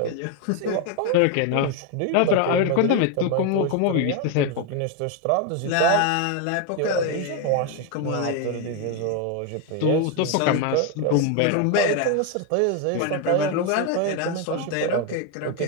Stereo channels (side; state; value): both; different; correlation 0.01